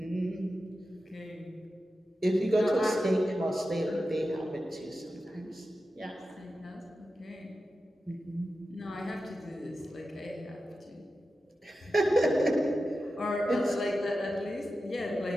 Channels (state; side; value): normal; both; correlation 0.92